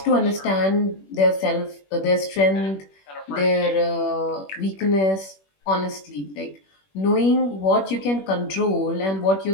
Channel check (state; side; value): late; right; 21 ms